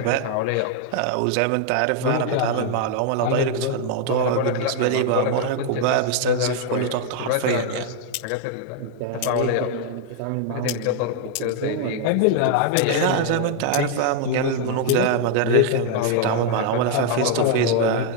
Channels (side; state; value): both; different; correlation 0.00